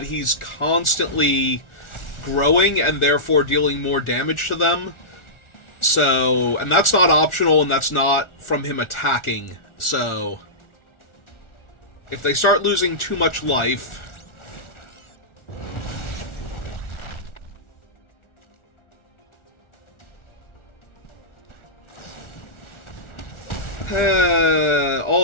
he's constantly growing and therefore dealing more damage to them. So, and that's not optional, and that's not from him attacking. So, if they start losing too much life... all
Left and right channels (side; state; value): right; late; 1.4 ms